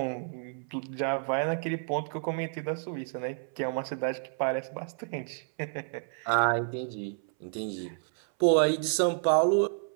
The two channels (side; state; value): left; silent; 58 dB below the other